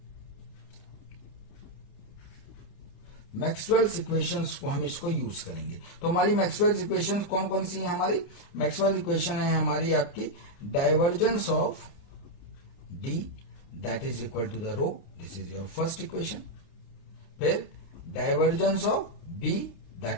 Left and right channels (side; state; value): right; late; 29 ms